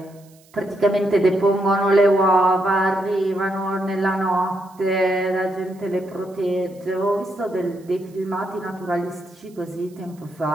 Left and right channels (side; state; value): right; noise; hiss, 29 dB below the sound